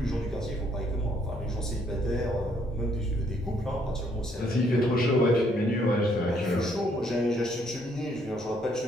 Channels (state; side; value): normal; both; correlation 0.68